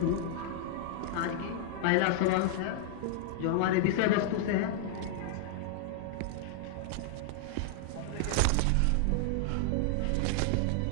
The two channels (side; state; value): both; different; correlation -0.01